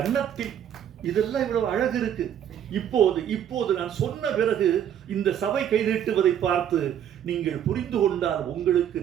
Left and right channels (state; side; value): quieter; left; 9.7 dB